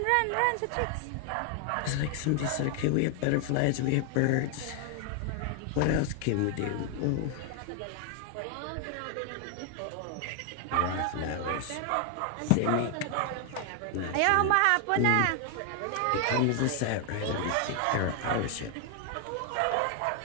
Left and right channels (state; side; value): different; both; correlation 0.00